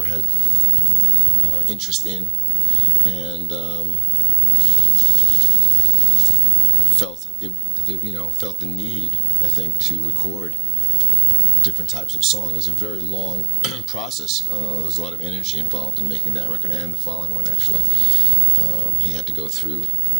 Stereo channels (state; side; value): quieter; left; 13.4 dB